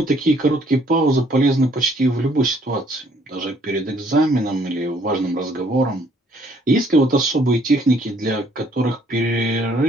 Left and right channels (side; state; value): both; normal; correlation 0.64